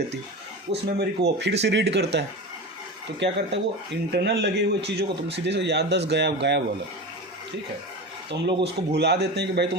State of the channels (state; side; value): normal; both; correlation 0.27